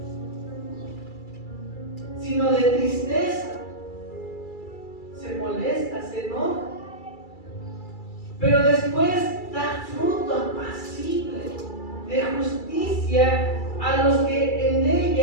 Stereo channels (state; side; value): late; right; 2.3 ms